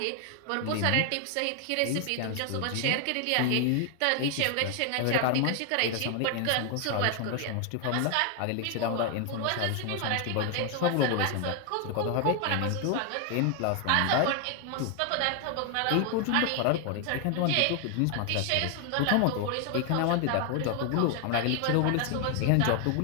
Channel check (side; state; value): both; different; correlation 0.00